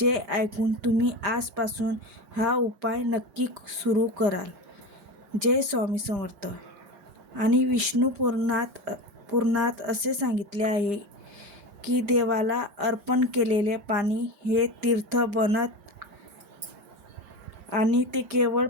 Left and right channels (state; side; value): late; left; 5.0 ms